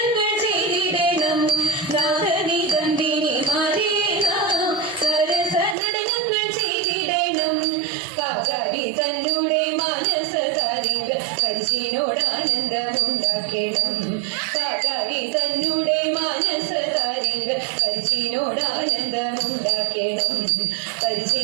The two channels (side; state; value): left; drops out; at 5.8 s